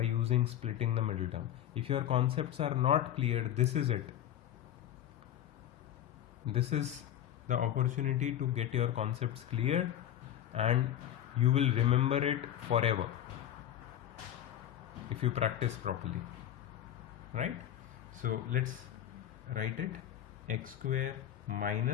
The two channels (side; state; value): right; quieter; 11.2 dB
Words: using splitting the middle term. If your concepts are not clear, this is it. this is the opportunity to get your concepts clear, and you will remember it forever if you practice properly, right? So let's write it. X square